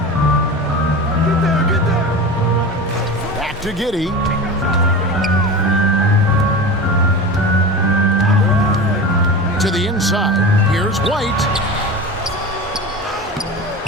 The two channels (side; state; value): both; normal; correlation 0.29